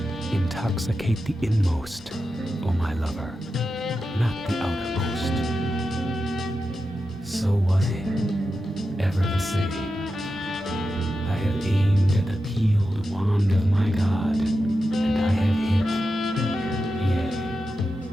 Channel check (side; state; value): both; normal; correlation 0.90